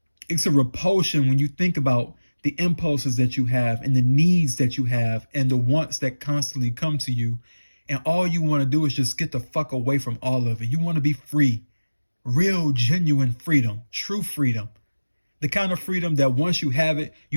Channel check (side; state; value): both; inverted; correlation -1.00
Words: It's a repulsion when you think about the impulses that you have and the needs that you have and the wants that constantly come to you. And all you want to do is just get the fuck away from all of it. You want to be free. Real, genuine freedom. True freedom. The kind of freedom that once you have it,